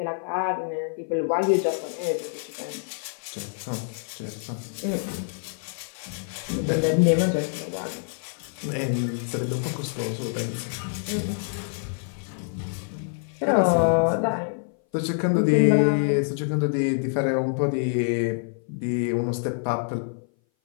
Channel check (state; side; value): silent; right; 58 dB below the other